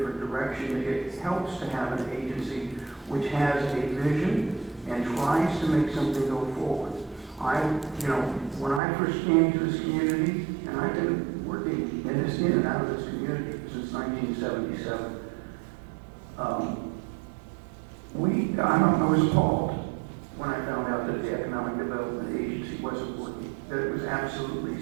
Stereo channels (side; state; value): left; drops out; at 8.8 s